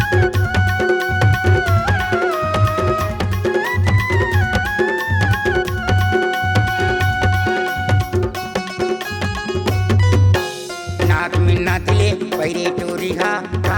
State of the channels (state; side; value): identical; both; correlation 1.00